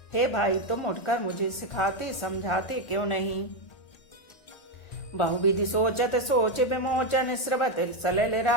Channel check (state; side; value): late; right; 1.4 ms